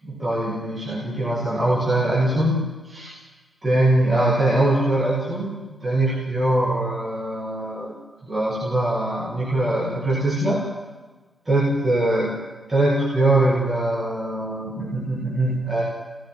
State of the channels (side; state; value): both; normal; correlation 0.78